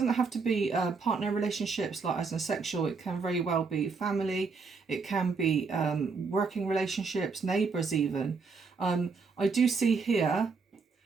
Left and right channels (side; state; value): left; quieter; 4.7 dB